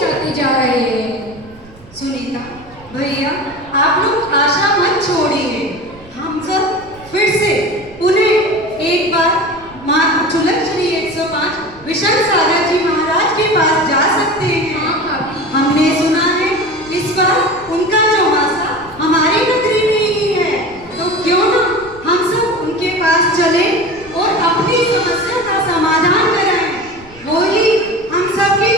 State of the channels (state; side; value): noise; right; rumble, 23 dB below the sound